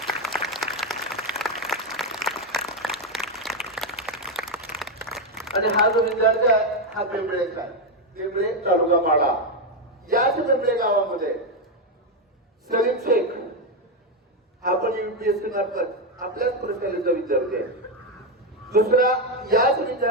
आणि हा जो विद्यार्थी आहे हा बेंबळेचा आहे. बेंबळे तालुका माडा. याच बेंबळे गावामध्ये सलीम शेख हा पण UPSC मार्फत आपल्याच प्रशालेचा विद्यार्थी आहे. दुसरा याच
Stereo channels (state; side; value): normal; both; correlation 0.06